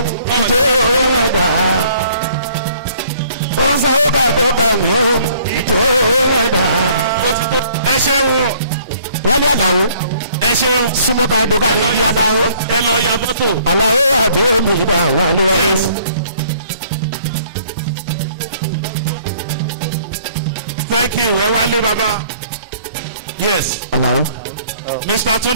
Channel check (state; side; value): inverted; both; correlation -0.59